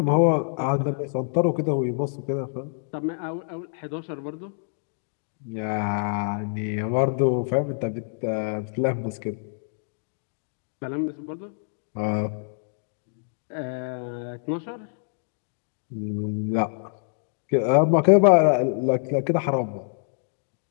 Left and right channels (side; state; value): right; silent; digital silence